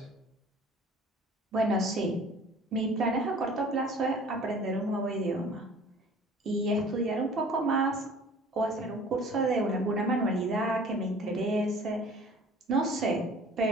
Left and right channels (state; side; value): normal; both; correlation 0.48